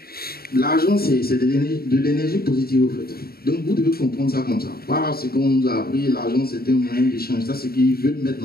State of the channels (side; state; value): right; late; 0.44 ms